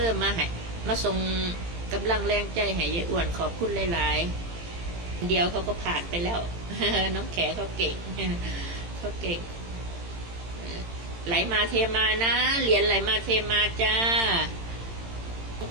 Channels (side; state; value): left; late; 18 ms